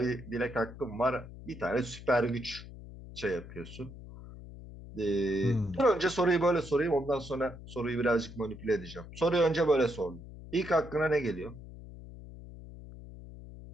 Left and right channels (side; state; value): left; noise; hum, 14 dB below the sound